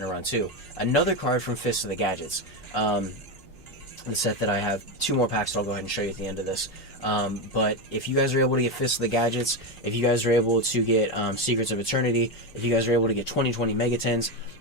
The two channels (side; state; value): both; normal; correlation 0.13